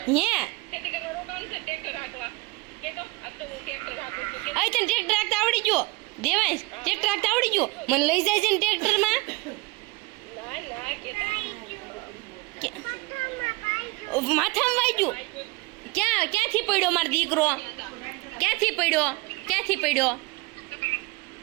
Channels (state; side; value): quieter; left; 23.9 dB